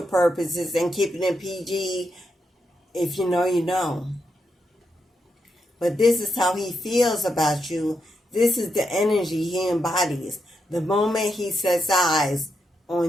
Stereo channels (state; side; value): normal; both; correlation 0.83